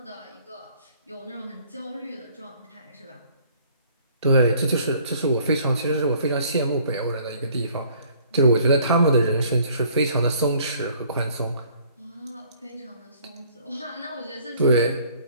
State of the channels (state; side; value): inverted; both; correlation -0.58